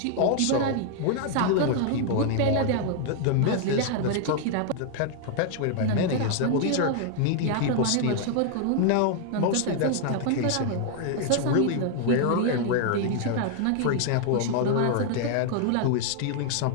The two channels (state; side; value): different; both; correlation 0.00